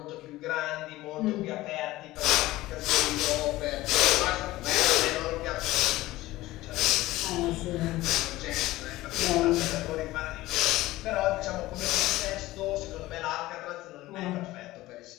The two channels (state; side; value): quieter; right; 17.5 dB